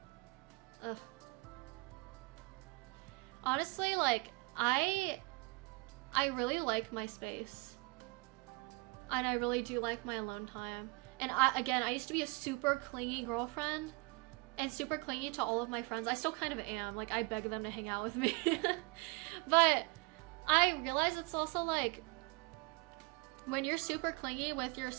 ugh. Honestly, like, I really like my space. And I really do like my alone time. And I used to be a super clingy girlfriend and super clingy to all of my friends. I still kind of am. Like, I beg them to hang out with me. But I realize it's also like, when you're super clingy with your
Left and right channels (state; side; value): quieter; left; 27.8 dB